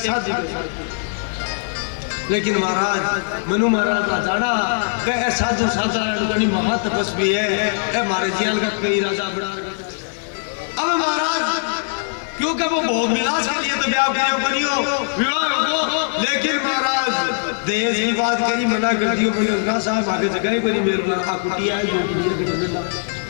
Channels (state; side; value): silent; right; digital silence